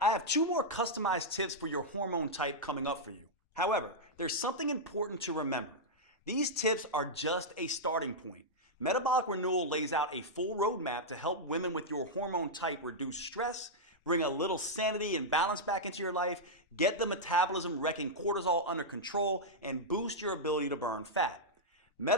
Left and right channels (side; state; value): both; normal; correlation -0.06